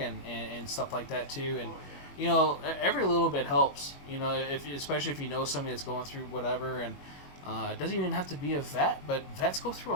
and stuff like that too, and every little bit helps. Especially if you know somebody that's going through whatever, and it doesn't even have to be a vet, but vets go through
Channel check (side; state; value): right; late; 22 ms